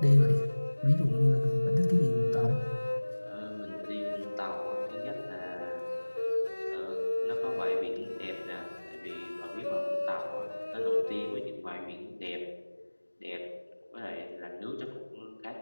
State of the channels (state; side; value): inverted; both; correlation -1.00